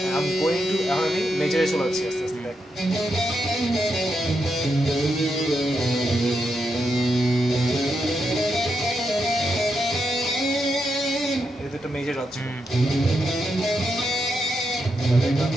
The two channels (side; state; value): both; normal; correlation 0.83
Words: I'm going to এখন আমি মেজরে চলে যাচ্ছি আস্তে আস্তে দেখ। এই দুটো মেজর হচ্ছে।